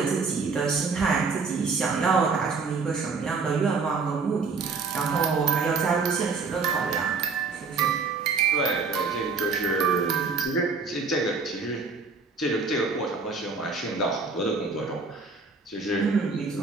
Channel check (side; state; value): left; quieter; 4.6 dB